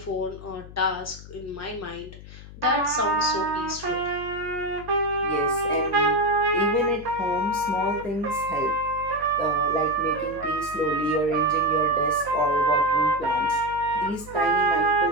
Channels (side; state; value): left; noise; hum, 16 dB below the sound